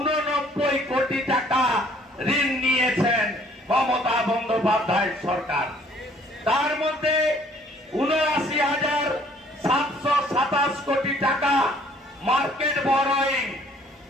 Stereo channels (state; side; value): normal; both; correlation 0.59